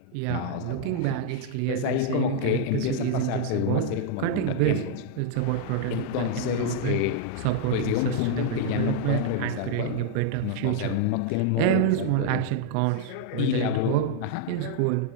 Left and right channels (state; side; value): different; both; correlation -0.01